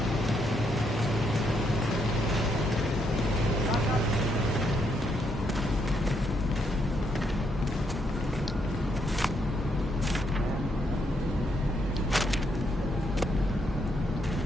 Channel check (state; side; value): normal; both; correlation 0.76